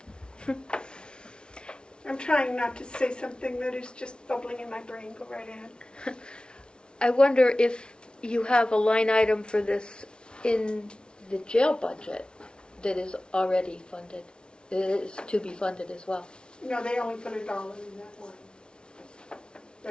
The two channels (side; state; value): right; late; 0.055 ms